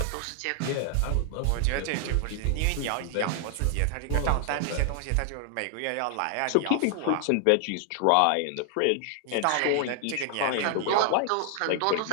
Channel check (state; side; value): different; both; correlation 0.00